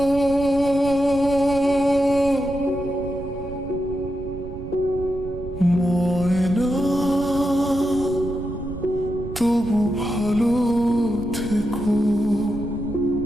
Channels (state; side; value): noise; right; rumble, 12 dB below the sound